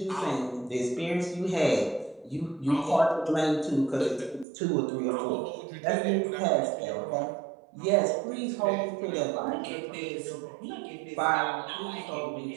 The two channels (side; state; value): left; drops out; at 4.5 s